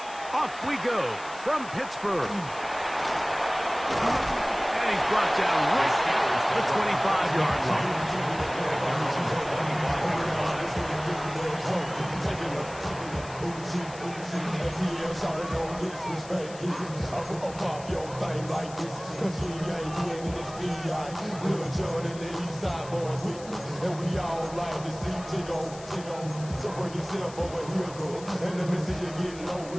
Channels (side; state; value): left; noise; hiss, 17 dB below the sound